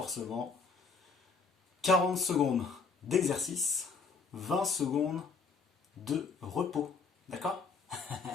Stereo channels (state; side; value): quieter; right; 4.9 dB